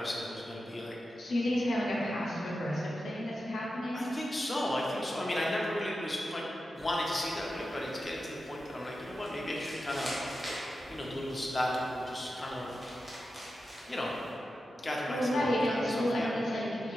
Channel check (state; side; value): normal; both; correlation 0.91